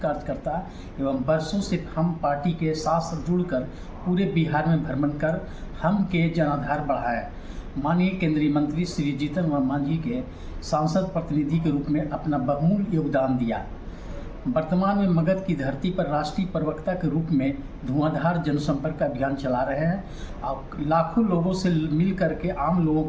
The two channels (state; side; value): identical; both; correlation 1.00